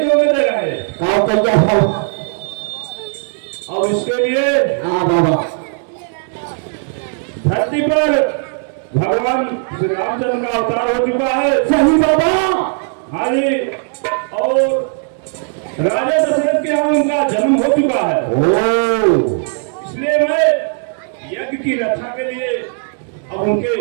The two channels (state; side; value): silent; left; 60 dB below the other